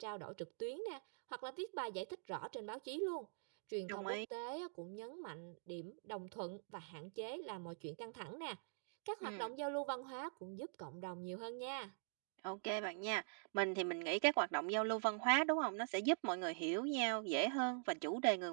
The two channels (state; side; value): silent; left; digital silence